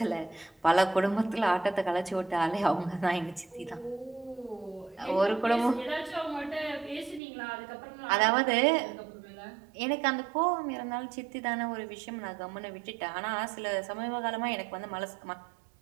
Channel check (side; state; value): left; drops out; at 7.2 s